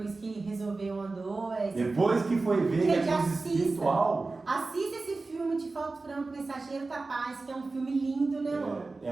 que resolveu, andou. Depois que foi ver que é coisa espiritual. Assista esse filme de Falto Franco, Mensageiro da Paz, que é um filme lindo, né, amor?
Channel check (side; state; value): left; quieter; 3.6 dB